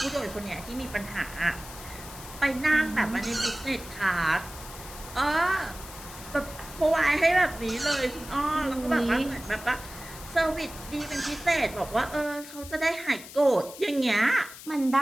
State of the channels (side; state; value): left; noise; hiss, 15 dB below the sound